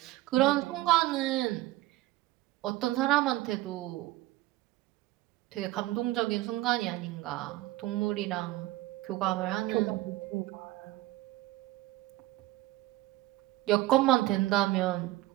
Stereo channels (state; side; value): quieter; left; 17.1 dB